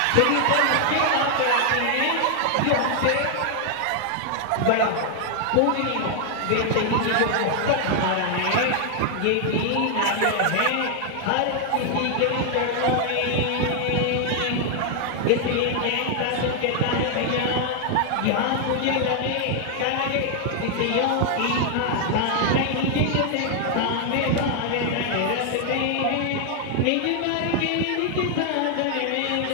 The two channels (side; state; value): both; different; correlation 0.00